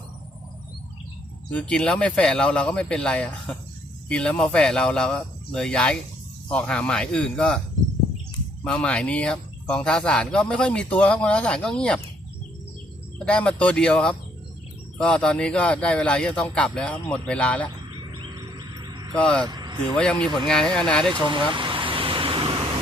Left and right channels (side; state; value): both; normal; correlation 0.68